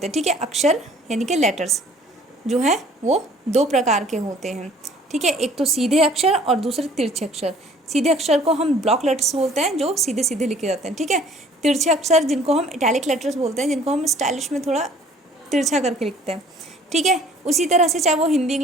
हैं। ठीक है, अक्षर यानी कि लेटर्स जो है वो दो प्रकार के होते हैं। ठीक है, एक तो सीधे अक्षर और दूसरे तिरछे अक्षर। सीधे अक्षर को हम ब्लॉक लेटर्स बोलते हैं, जो सीधे सीधे लिखे जाते हैं। ठीक है, तिरछे अक्षर जिनको हम इटैलिक लेटर्स बोलते हैं, जिनको हम स्टाइलिश में थोड़ा तिरछा करके लिखते हैं। ठीक है, उसी तरह से चाहे वो हिंदी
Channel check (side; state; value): both; normal; correlation 0.54